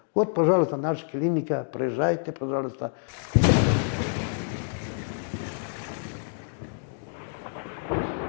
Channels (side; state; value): right; silent; digital silence